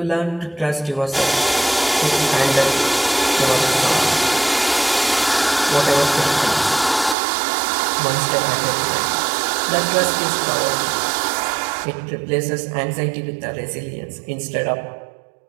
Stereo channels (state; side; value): drops out; left; at 7.2 s